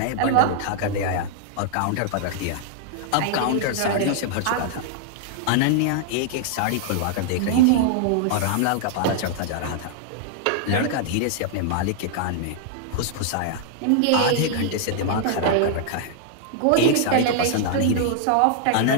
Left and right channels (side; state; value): both; different; correlation -0.01